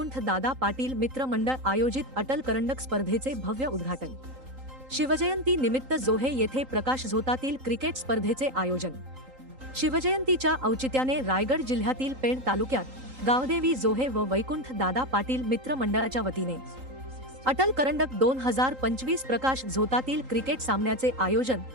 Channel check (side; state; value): left; late; 3.8 ms